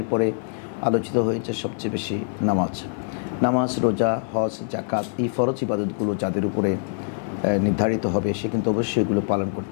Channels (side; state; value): right; silent; digital silence